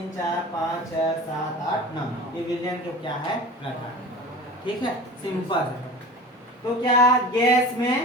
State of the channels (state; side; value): normal; both; correlation 0.37